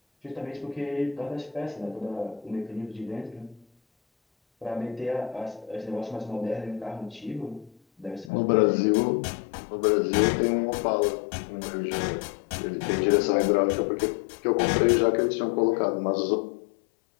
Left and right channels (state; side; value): drops out; right; at 8.3 s